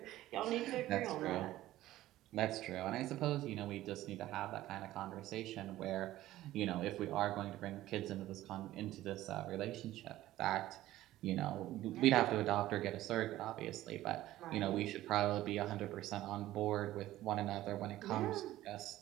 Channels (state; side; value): quieter; left; 15.1 dB